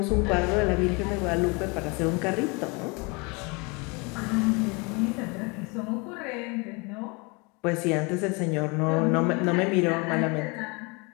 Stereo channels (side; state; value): right; quieter; 29.2 dB